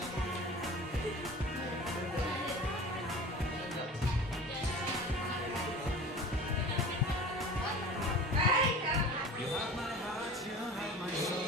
You have my heart, you have my soul,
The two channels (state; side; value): normal; both; correlation 0.38